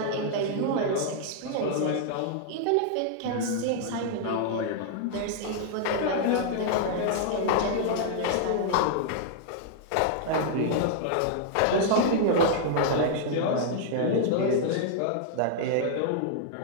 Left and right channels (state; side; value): different; both; correlation -0.01